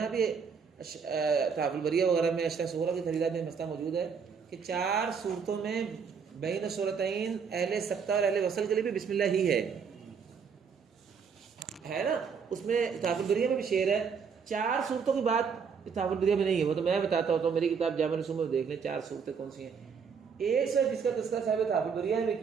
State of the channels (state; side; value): quieter; left; 6.2 dB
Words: بھی تحف البریہ وغیرہ میں اشرح سورہ کی خریدات میں مسئلہ موجود ہے کہ 4 صورتوں میں بین سورتین اہل سکتہ اور اہل وصل کے لیے بھی بسم اللہ ہی ہے نا. اس میں تحف البریہ میں بھی شعر ہے، 4 صورتوں کی بات تحف البریہ میں نہیں ہے، وہ تو میں بتاتا ہوں، تو میری کتاب جامع الرسوم میں دیکھ لیں 4 صورتیں کون سی ہیں. ایک سے جس کا تذکرہ صاحب تحف البریہ میں